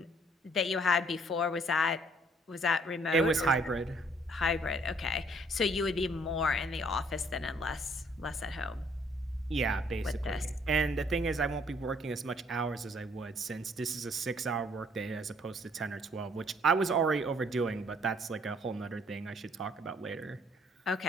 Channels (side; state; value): both; normal; correlation 0.63